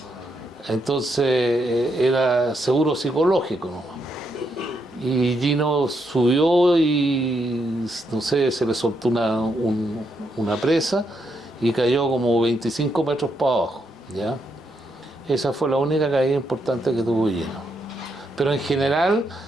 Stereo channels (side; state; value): both; normal; correlation 0.79